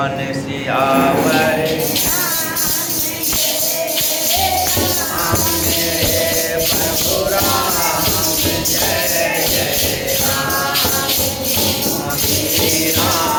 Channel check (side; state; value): both; identical; correlation 1.00